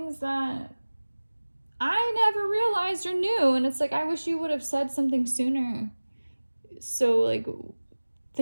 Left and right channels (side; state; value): both; inverted; correlation -1.00